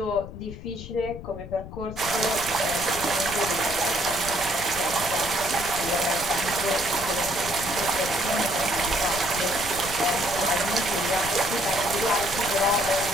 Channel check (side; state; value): left; noise; rumble, 12 dB below the sound